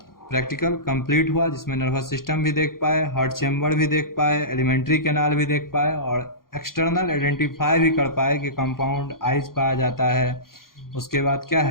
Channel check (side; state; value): right; late; 0.92 ms